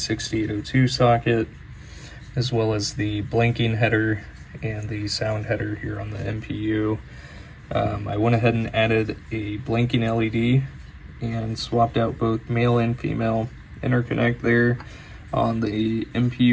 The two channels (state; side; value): identical; both; correlation 1.00